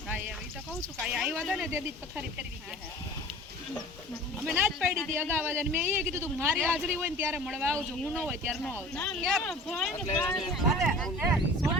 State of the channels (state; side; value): normal; both; correlation 0.42